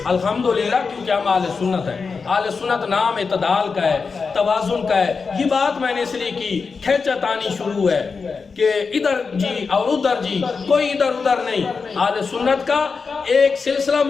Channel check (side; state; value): right; quieter; 4.9 dB